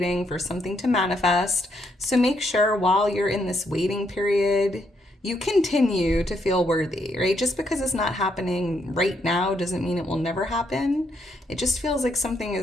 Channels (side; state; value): both; normal; correlation 0.75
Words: for something to manifest. So make sure while you're in this waiting period, you continue to feel worthy, right? Just because it's not happening right now doesn't mean it will never happen. It just feels like something